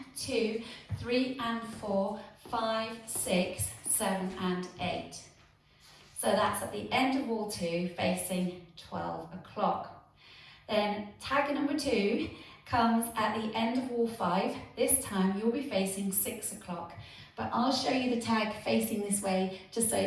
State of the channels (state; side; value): identical; both; correlation 1.00